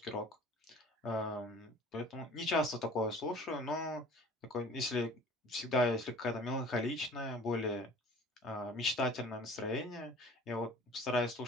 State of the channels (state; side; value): normal; both; correlation 0.46